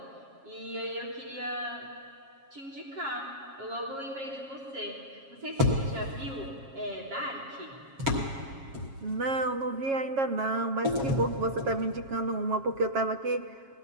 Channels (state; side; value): late; left; 7.4 ms